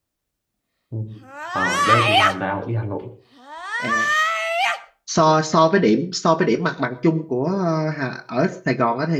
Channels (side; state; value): both; identical; correlation 1.00